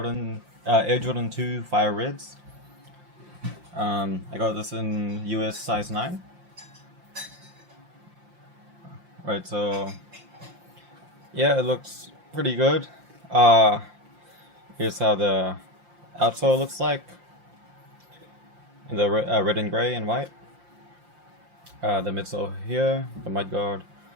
Air Jordan 2 Fire Reds. I got this in US size 9. Right, so yeah, it looks pretty good. Uh, Here's how the outsole looks like in the red and gray and white. The midsole here, the mud guard.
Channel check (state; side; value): late; left; 5.7 ms